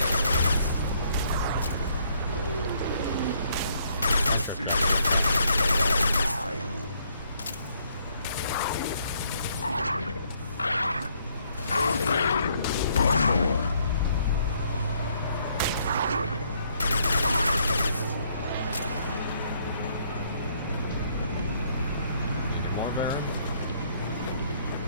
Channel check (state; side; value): inverted; both; correlation -0.68